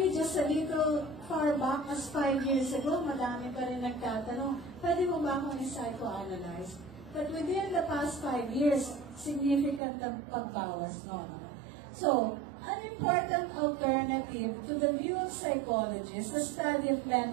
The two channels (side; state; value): left; drops out; at 9.8 s